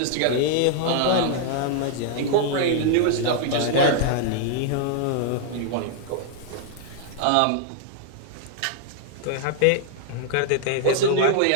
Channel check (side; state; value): both; different; correlation 0.00